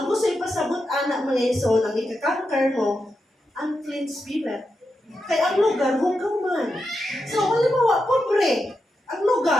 gusto ipasabot anak mga iso, nang ikakanker mo, unclean spirit. Kaya ang lugar, hugaw man. So, halimbawa, pobre, ang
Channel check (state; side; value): normal; both; correlation 0.87